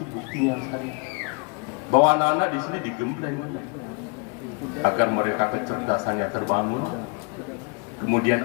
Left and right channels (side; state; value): right; quieter; 33.7 dB